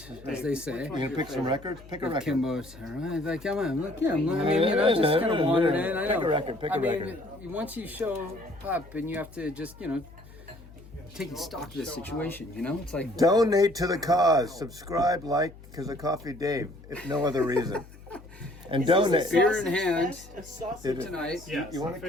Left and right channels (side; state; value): left; noise; hum, 20 dB below the sound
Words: as they say. You gonna pick some records? Pick a record. Kimbo's, all right, like, come on, look, yeah, I mean, you know, just kind of wandered in. I know. Pick a record, pick a record. Once you show up and you have to just, you know, take stock of the situation, you know? It's like, Donate to the cause. Subscribe, like, because of Coffee Dave, if no other reason. And donate. beer in hand Did it- tonight. Yes, You want to